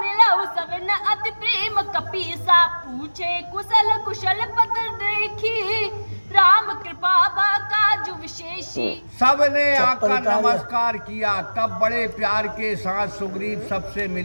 सवन अति प्रेम कपीसा। पूछे कुशल कुशल पद देखी, राम कृपा काज विशेषी। सबने आकर नमस्कार किया। तब बड़े प्यार के साथ सुग्रीव सबसे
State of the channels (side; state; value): both; inverted; correlation -1.00